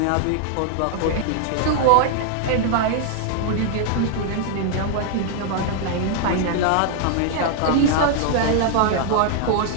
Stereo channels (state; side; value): different; both; correlation 0.00